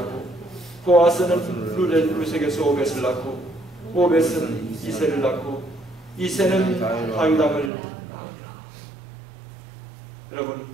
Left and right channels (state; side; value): drops out; left; at 7.7 s